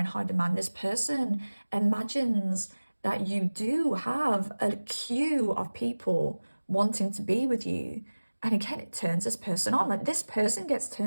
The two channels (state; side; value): inverted; both; correlation -1.00